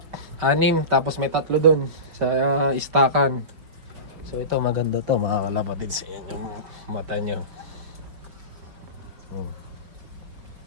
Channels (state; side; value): late; left; 5.3 ms